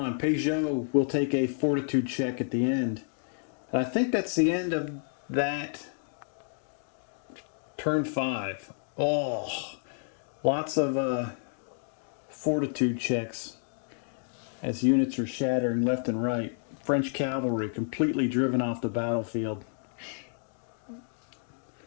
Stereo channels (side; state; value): right; silent; digital silence